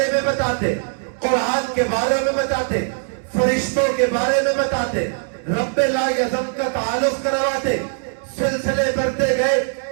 میں بتاتے، قرآن کے بارے میں بتاتے، فرشتوں کے بارے میں بتاتے، رب لا یزم کا تعلق کرواتے۔ سلسلے بڑھتے گئے،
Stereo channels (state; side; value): silent; left; 64 dB below the other